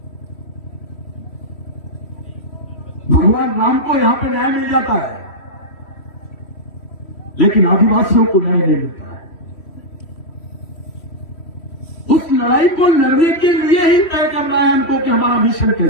भगवान राम को यहां पे न्याय मिल जाता है, लेकिन आदिवासियों को न्याय नहीं मिलता है। उस लड़ाई को लड़ने के लिए ही तय करना है हमको कि हमारा मिशन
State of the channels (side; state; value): right; late; 3.1 ms